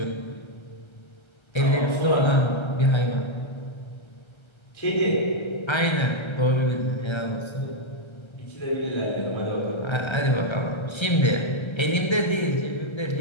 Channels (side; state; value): right; late; 1.3 ms